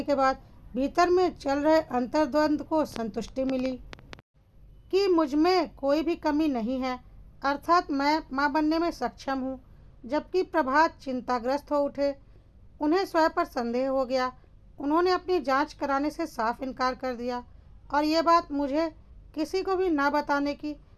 के बाद भीतर में चल रहे अंतर्द्वंद को संतुष्टि मिली कि मुझ में कोई भी कमी नहीं है, अर्थात मैं मां बनने में सक्षम हूँ। जबकि प्रभात चिंताग्रस्त हो उठे। उन्हें स्वयं पर संदेह हो गया। उन्होंने अपनी जांच कराने से साफ इनकार कर दिया और ये बात मुझे किसी को भी ना बताने की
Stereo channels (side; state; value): both; identical; correlation 1.00